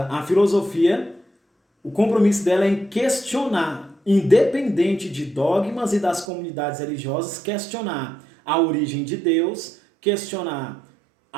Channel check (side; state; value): left; drops out; at 6.2 s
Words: à filosofia. O compromisso dela é em questionar, independente de dogmas e das comunidades religiosas, questionar a origem de Deus, questionar